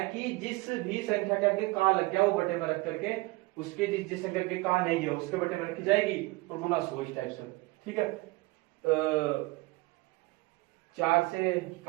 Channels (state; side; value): quieter; left; 22.9 dB